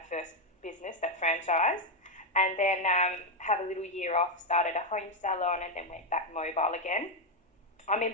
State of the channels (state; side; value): normal; both; correlation 0.05